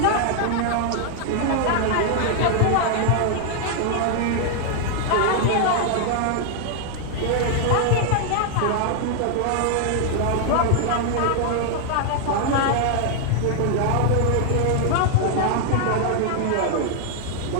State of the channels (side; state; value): both; different; correlation 0.00